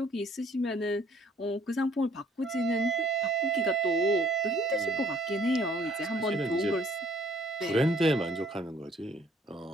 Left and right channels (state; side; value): normal; both; correlation 0.60